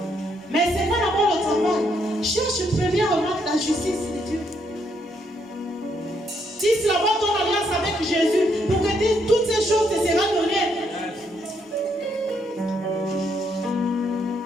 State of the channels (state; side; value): normal; both; correlation 0.74